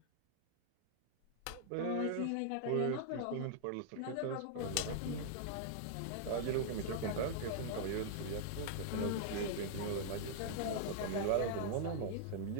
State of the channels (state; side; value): different; both; correlation -0.01